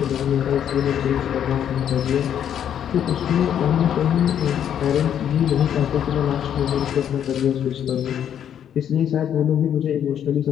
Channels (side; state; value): right; quieter; 9.4 dB